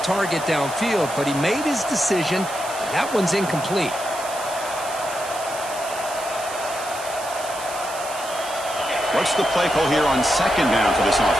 target downfield. But he made his decision. That one's incomplete. What's the play call here on second down for this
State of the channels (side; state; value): right; noise; hiss, 12 dB below the sound